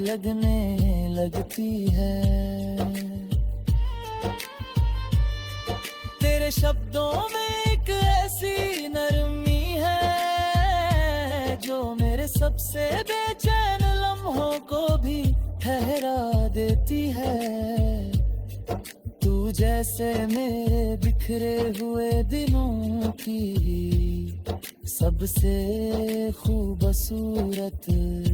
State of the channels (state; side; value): identical; both; correlation 1.00